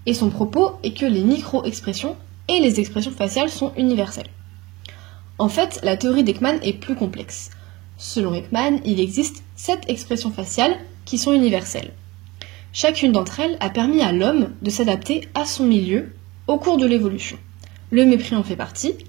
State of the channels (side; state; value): left; quieter; 21.7 dB